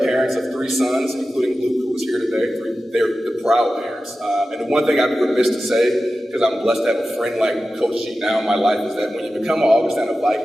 parents of 3 sons, including Luke, who was here today. They're the proud parents. And the one thing I'd be remiss to say, because I'm blessed to have a friend like Coach G now in my life, is that when you become an Augustana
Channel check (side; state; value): both; normal; correlation 0.94